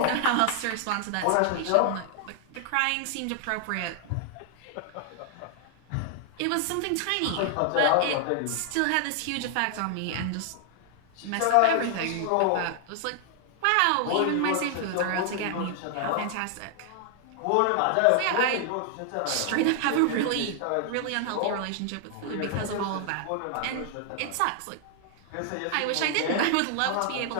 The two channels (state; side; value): different; both; correlation 0.00